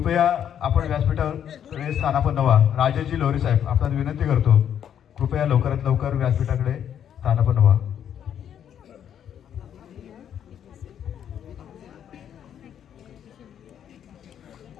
आपण व्यासपीठावर स्थानापन्न व्हा. राजेजी लोहरे साहेब, आपण विनंती करतो, कृपया लवकरात लवकर व्यासपीठाकडे स्थानापन्न व्हा.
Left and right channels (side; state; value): right; quieter; 9.3 dB